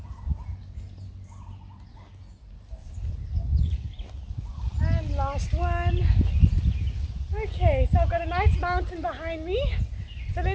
And last one. Okay, so I've got a nice mountain behind me, so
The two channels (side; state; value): both; identical; correlation 1.00